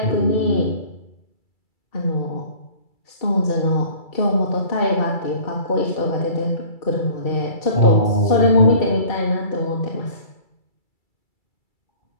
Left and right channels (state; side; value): late; right; 2.3 ms